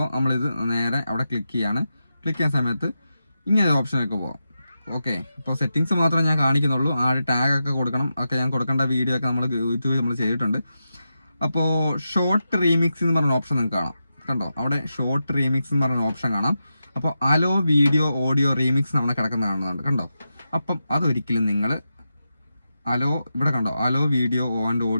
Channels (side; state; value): both; inverted; correlation -0.89